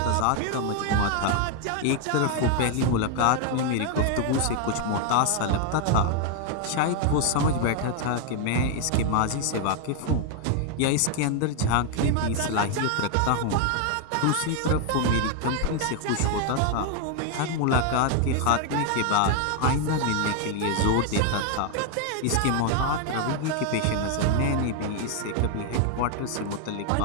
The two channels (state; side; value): different; both; correlation 0.01